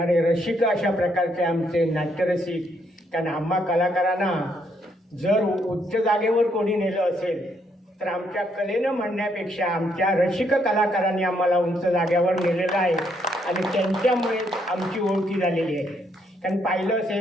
रसिक अशा प्रकारचे आमचे नाट्यरसिक. कारण आम्हा कलाकारांना जर उच्च जागेवर कोणी नेलं असेल तर आमच्या कलेनं म्हणण्यापेक्षा आमच्या रसिक कलाकारांनी आम्हाला उंच जागेवर नेलेलं आहे आणि त्यांच्यामुळे आमची ओळखी झालेली आहे. कारण पाहिलं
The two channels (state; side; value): normal; both; correlation 0.73